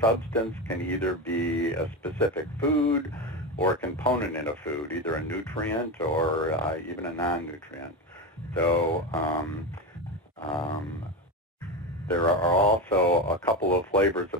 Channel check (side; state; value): both; normal; correlation 0.18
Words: can either be a specific food or a component in a food, either a nutrient or even a non-nutrient. So there are also a couple of flavors